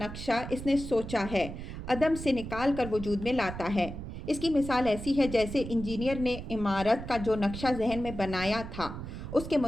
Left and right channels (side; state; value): right; noise; rumble, 9 dB below the sound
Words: اس نے سوچا ہے عدم سے نکال کر وجود میں لاتا ہے۔ اس کی مثال ایسی ہے جیسے انجینئر نے عمارت کا جو نقشہ ذہن میں بنایا تھا، اس کے